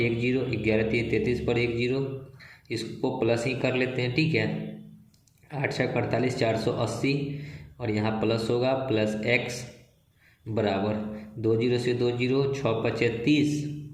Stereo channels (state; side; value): identical; both; correlation 1.00